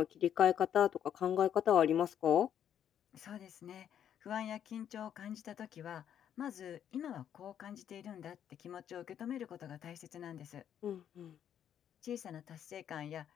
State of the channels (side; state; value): right; quieter; 9.6 dB